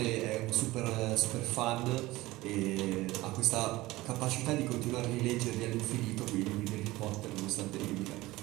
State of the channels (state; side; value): quieter; left; 18.8 dB